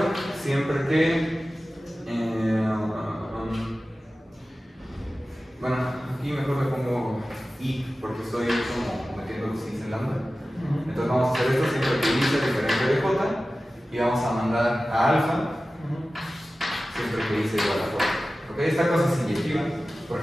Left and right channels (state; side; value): normal; both; correlation 0.95